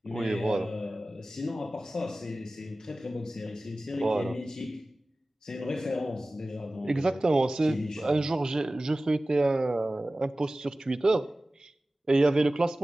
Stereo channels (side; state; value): both; normal; correlation 0.97